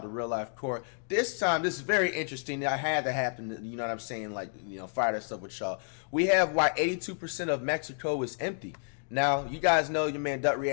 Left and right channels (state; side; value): silent; right; 58 dB below the other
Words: to Real Life Court. This time, this is very interesting. I had to happen, you know what I'm saying, like, you know, fire this up with y'all. We have why 82% of Mexico is empty. Now, you guys know your man Dut